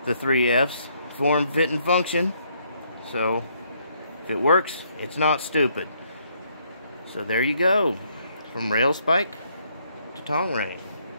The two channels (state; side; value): inverted; both; correlation -0.70